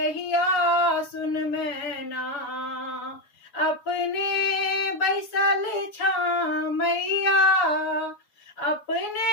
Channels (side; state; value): right; late; 7.1 ms